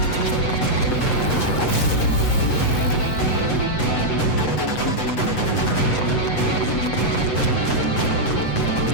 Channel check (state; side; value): late; right; 7.9 ms